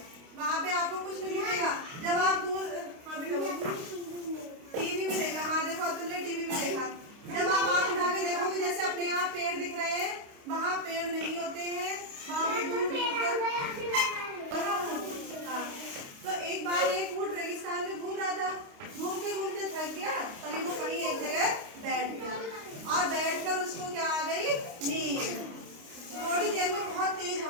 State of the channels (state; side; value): late; left; 29 ms